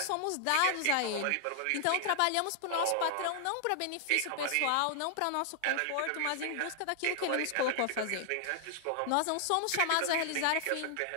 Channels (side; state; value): both; different; correlation -0.01